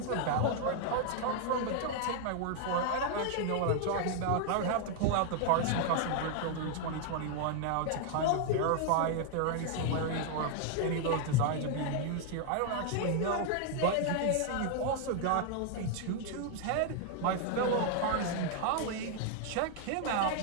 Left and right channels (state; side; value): different; both; correlation 0.00